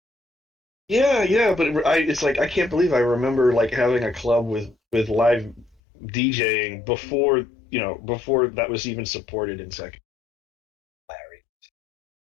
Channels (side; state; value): right; drops out; at 5.8 s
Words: Yeah, yeah, but it's like I can't believe I remember like having a club with live DJing before that was even supported in second. Larry.